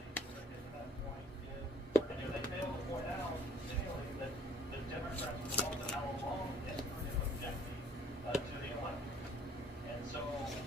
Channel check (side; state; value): both; normal; correlation 0.58